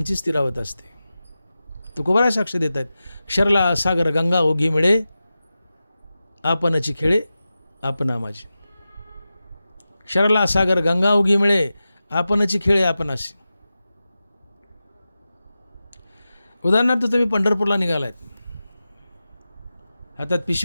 स्थिरावत असते. तुकोबाराय साक्ष देत आहेत. क्षरला सागर गंगा ओघी मिळे, आपणची खेळे आपणा माझी. क्षरला सागर गंगा ओघी मिळे, आपणची खेळे आपणाशी. उदाहरणार्थ तुम्ही पंढरपूरला निघालायत, हातात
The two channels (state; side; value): inverted; both; correlation -0.93